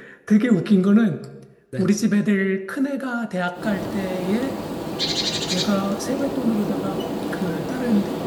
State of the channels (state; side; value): identical; both; correlation 1.00